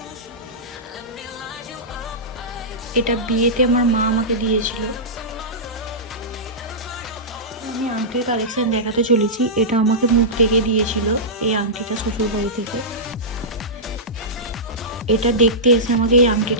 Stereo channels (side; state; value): both; normal; correlation -0.16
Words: এটা বিয়েতে আমার মা আমাকে দিয়েছিল। আমি আংটির কালেকশন দেখাতে চলেছি। এটা আমাকে মুখ থেকে দিয়েছিল এই আংটিটা শ্বশুর বাড়ি থেকে। এটা দেখতে এসে আমাকে এই